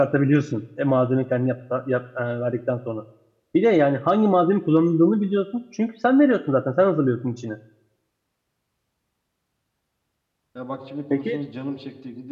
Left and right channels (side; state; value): both; identical; correlation 1.00